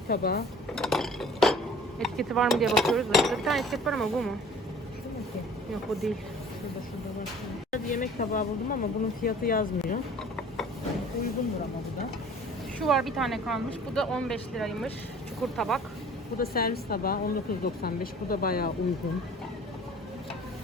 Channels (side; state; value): both; normal; correlation 0.48